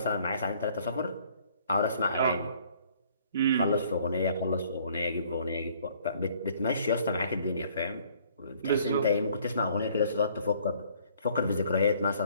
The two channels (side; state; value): both; inverted; correlation -0.59